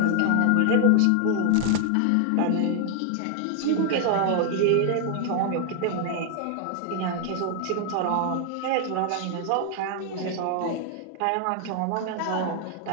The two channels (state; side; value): different; both; correlation 0.00